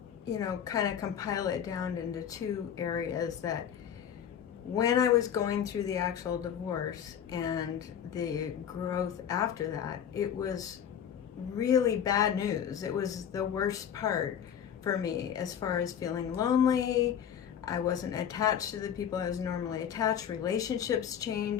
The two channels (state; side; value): quieter; right; 8.8 dB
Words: kind of compile it down into two areas. That when I was going through the actual divorce and the growth after that, it was really bad news. It was the worst part for me, as far as feeling lonely. I wasn't attached to the people I was normally attached. Relationships